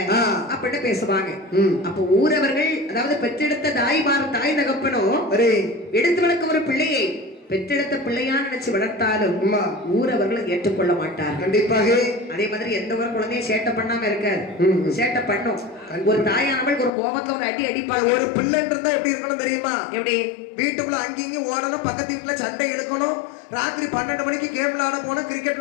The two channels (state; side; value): drops out; right; at 16.9 s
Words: அப்படின்னு பேசுவாங்க. அப்ப ஊரவர்கள், அதாவது பெற்றெடுத்த தாய் தகப்பனும் எடுத்து வளர்க்க ஒரு பிள்ளையை பெற்றெடுத்த பிள்ளையா நினைச்சு வளர்த்தாலும் ஊரவர்கள் ஏற்றுக்கொள்ள மாட்டார். கண்டிப்பாக. அதே மாதிரி எந்த ஒரு குழந்தையும் சேட்டை பண்ணாம இருக்காது, சேட்டை பண்ணும். ஒரு தாயானவள் ஒரு கோபத்துல ஒரு அடி அடிப்பாங்க. ஒரு பிள்ளைன்னு இருந்தா எப்படி இருக்கணும் தெரியுமா? எப்படி? வீட்டுக்குள்ள அங்கேயும் ஓடணும், பக்கத்து வீட்டுல சண்டை எடுக்கணும், ராத்திரி 12 மணிக்கு கேம் விளையாட போனோம், கிரிக்கெட்